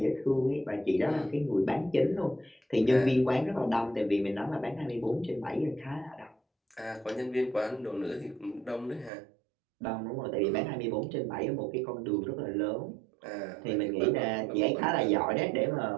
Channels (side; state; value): left; drops out; at 9.1 s